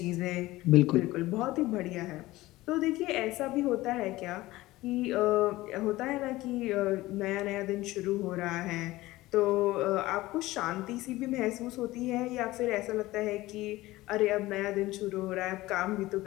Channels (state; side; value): quieter; right; 18.1 dB